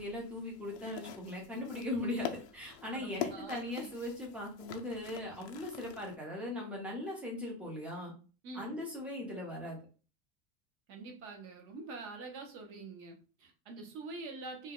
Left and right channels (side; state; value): both; normal; correlation 0.23